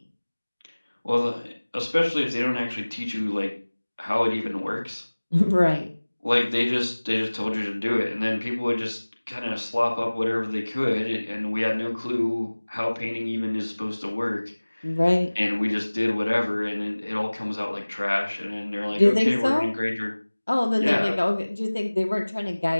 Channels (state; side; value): inverted; both; correlation -1.00